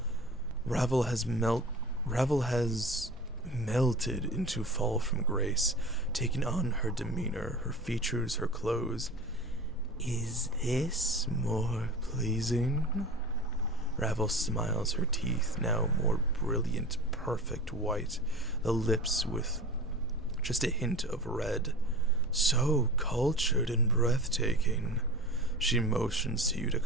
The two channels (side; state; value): both; normal; correlation 0.34